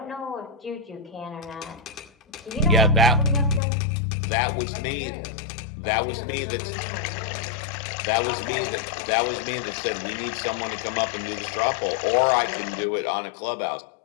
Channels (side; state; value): right; drops out; at 3.6 s